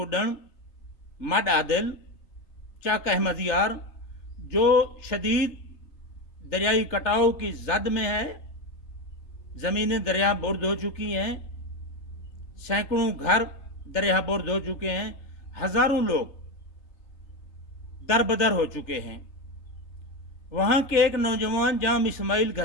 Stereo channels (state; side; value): late; right; 3.3 ms